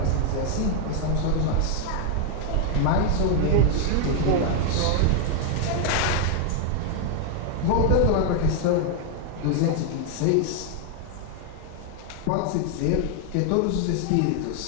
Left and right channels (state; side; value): different; both; correlation 0.00